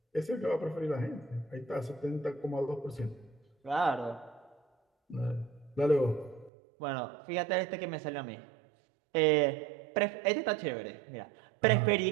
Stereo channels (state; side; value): drops out; left; at 6.5 s